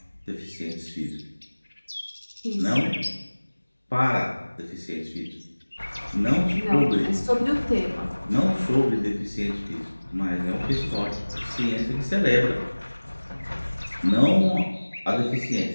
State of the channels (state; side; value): inverted; both; correlation -1.00